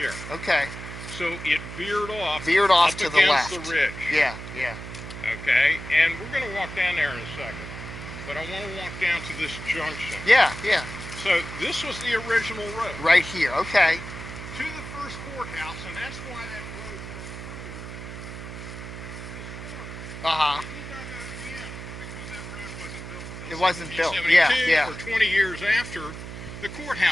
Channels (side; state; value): right; noise; hum, 10 dB below the sound